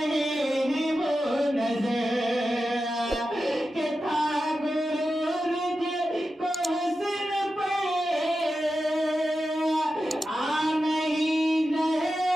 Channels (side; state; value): both; normal; correlation 0.91